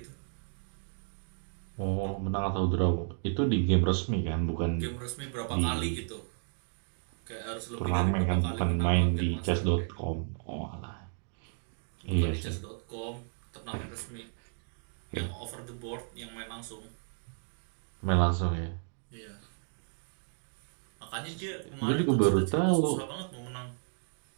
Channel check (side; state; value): left; silent; 56 dB below the other